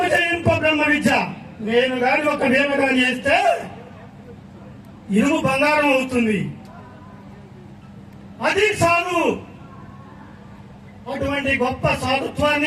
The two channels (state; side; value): identical; both; correlation 1.00